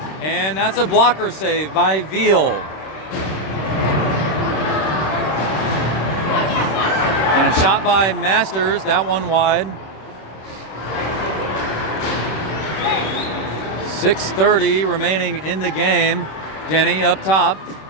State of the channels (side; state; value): right; late; 26 ms